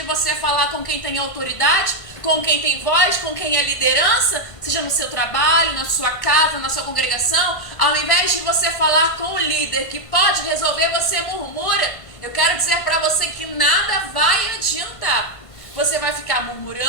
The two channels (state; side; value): late; right; 1.5 ms